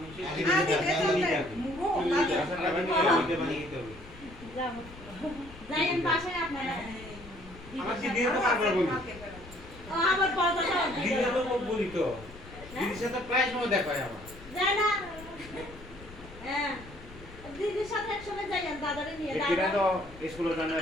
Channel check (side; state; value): left; noise; rumble, 18 dB below the sound